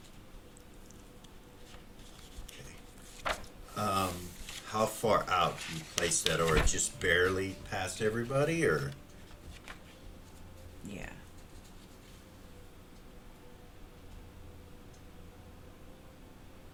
Okay. How far out do you place that, or just barely past everybody, or? Yeah.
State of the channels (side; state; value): both; identical; correlation 1.00